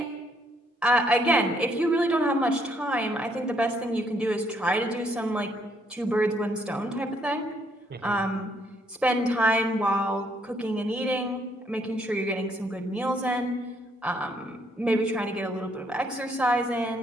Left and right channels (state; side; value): normal; both; correlation 0.70